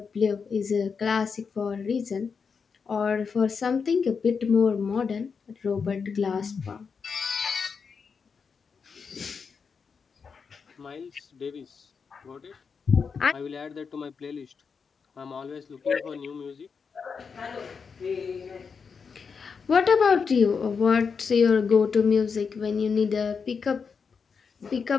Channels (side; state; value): right; quieter; 5.7 dB